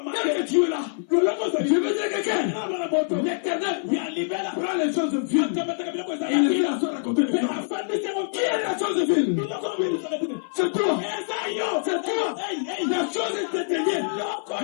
que tu es là, je veux dire quelqu'un. L'Éternel prend les choses de Dieu. Il dit la chose à côté de Dieu. Qui est la chose de Dieu? C'est toi. C'est toi. La chose est éteignée.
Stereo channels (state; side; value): silent; right; 58 dB below the other